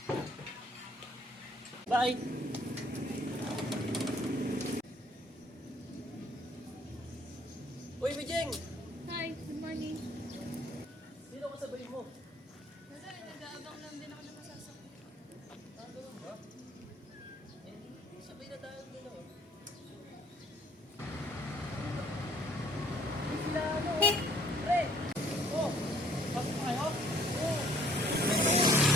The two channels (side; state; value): both; normal; correlation 0.60